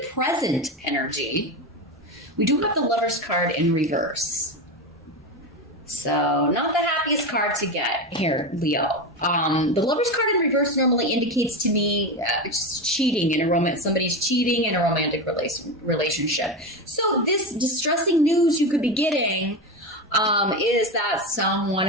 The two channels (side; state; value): both; normal; correlation 0.19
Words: present energy, we do have the Lover's card in reverse. So not the happiest card to get here, Leo. The Lover's card in reverse normally indicates to me just cheating in a romance. Somebody's cheating in a romantic relationship. So this distressing news you could be getting is that someone